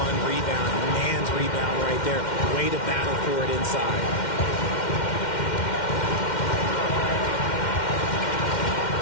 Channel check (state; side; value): late; right; 2.1 ms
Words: rebound, man's rebound right there. Way to battle for it inside.